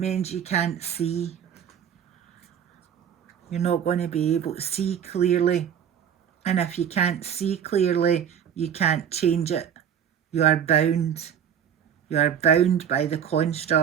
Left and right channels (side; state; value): left; quieter; 8.7 dB